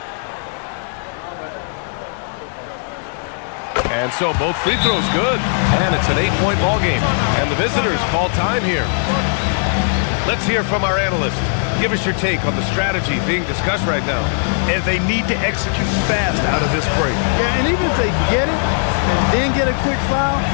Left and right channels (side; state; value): right; silent; digital silence